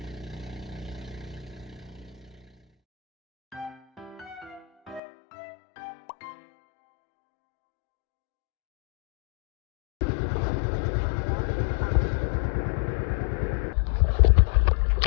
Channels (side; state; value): right; drops out; at 5.0 s